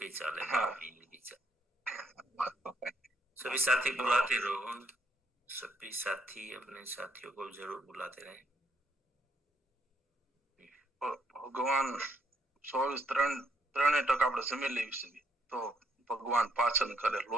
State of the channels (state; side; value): normal; both; correlation 0.72